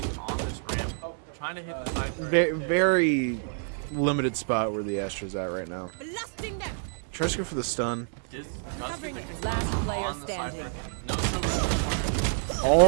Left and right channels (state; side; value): silent; left; digital silence